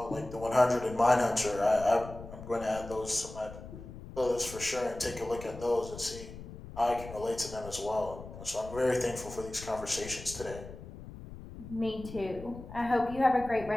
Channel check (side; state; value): left; noise; rumble, 13 dB below the sound